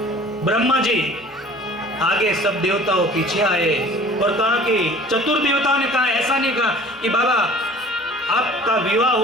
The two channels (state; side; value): normal; both; correlation 0.47